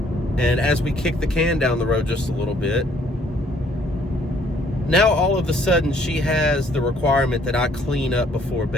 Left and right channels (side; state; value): both; normal; correlation 0.63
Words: and as we kick the can down the road just a little bit, now all of a sudden she has the requirement that I clean up before